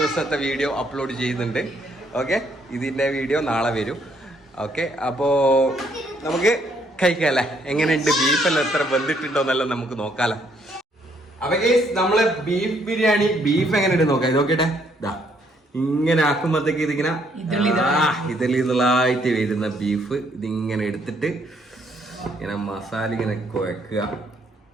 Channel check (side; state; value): both; normal; correlation 0.69